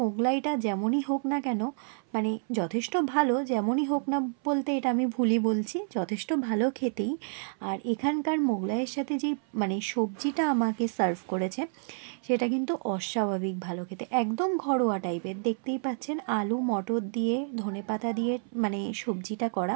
মোগলাইটা যেমনই হোক না কেন, যথেষ্ট ভালো, যেমনই হোক না বলতে এটা আমি ভুলই বলছি, যথেষ্ট ভালো খেতেই। আর এখানকার মোগলাইয়ের সাথে যেই সবজিটা আমাকে সার্ভ করেছে সেটা কিন্তু অস্বাভাবিক ভালো খেতে, একদম ঘরোয়া টাইপের। দেখতেই পাচ্ছেন আলু মটর দিয়ে ধনেপাতা দিয়ে সবজিটা করা,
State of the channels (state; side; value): silent; left; 58 dB below the other